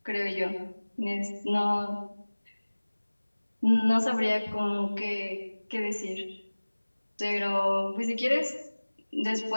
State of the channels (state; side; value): inverted; both; correlation -1.00